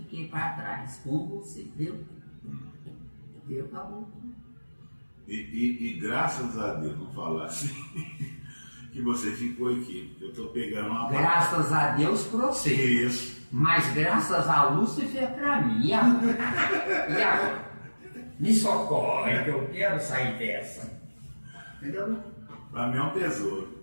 para trás com você, entendeu? Acabou. E graças a Deus, não falar assim, que você ficou aqui. Eu estou pegando uma Graças a Deus para você. Isso. Mas graças a Lúcifer para mim. E agora? Me socorre que eu quero sair dessa. Entendeu? Para mim é um tesouro.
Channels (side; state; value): both; inverted; correlation -1.00